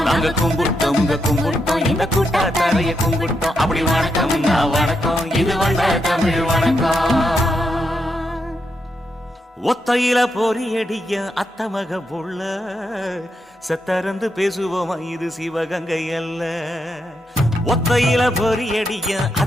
நாங்க கும்பிட்டோம் கும்பிட்டோம் இந்த கூட்டாத்தாரைய கும்பிட்டோம். அப்படி வணக்கம் வணக்கம் இது வந்த தமிழ் வணக்கம். ஒத்தையில பொறியடிய அத்தமக புள்ள செத்தறந்து பேசுவோமா இது சிவகங்கை அல்ல. ஒத்தையில பொறியடிய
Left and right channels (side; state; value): both; normal; correlation 0.82